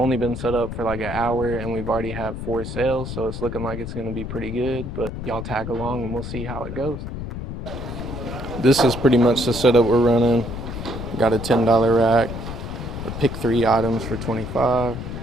been set up for like an hour and we've already had 4 sales, so it's looking like it's gonna be pretty good, but y'all tag along and we'll see how it goes. This is pretty much the setup we're running. Got a $10 rack. Pick 3 items for $25.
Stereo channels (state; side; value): noise; left; rumble, 7 dB below the sound